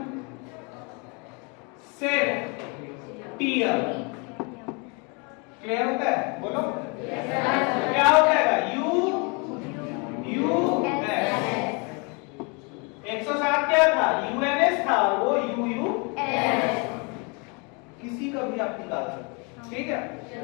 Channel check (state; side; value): quieter; right; 32.3 dB